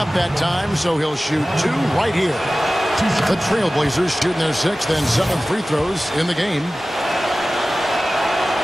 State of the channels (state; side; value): normal; both; correlation 0.97